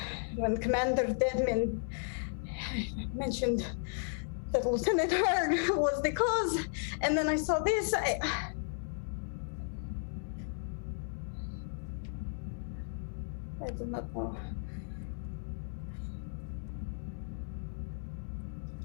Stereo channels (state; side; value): silent; right; digital silence